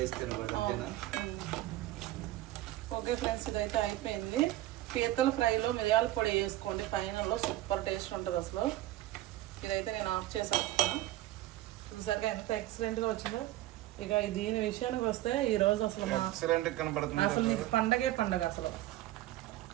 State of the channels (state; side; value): quieter; left; 15.6 dB